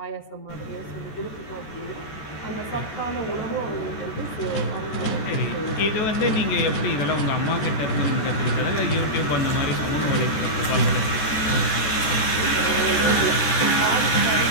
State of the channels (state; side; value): late; right; 14 ms